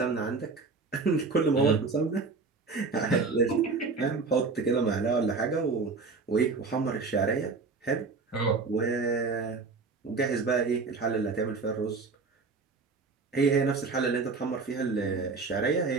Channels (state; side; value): quieter; left; 4.3 dB